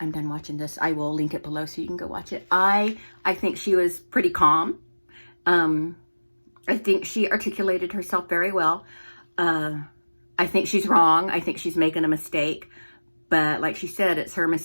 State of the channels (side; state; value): both; inverted; correlation -1.00